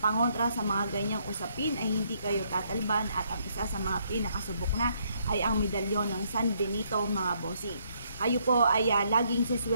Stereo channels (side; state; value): both; inverted; correlation -0.71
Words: sa mga ganyang usapin ay hindi kayo tatalban at ang isa sa mga pinakasubok na ay ang medalyon ng San Benito mga bossing. Kayo po ay laging